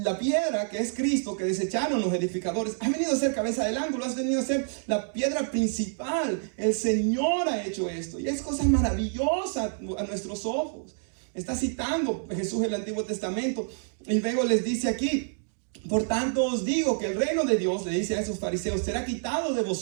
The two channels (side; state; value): left; silent; digital silence